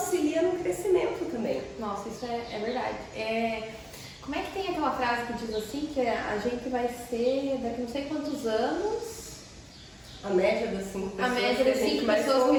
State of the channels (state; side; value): identical; both; correlation 1.00